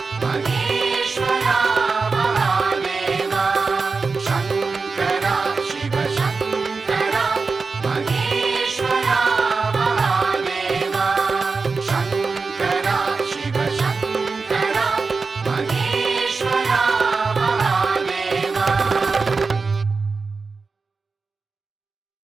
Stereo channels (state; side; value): quieter; left; 4.4 dB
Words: மகேஸ்வரா மகாதேவா. சங்கரா சிவ சங்கரா மகேஸ்வரா மகாதேவா. சங்கரா சிவ சங்கரா மகேஸ்வரா மகாதேவா.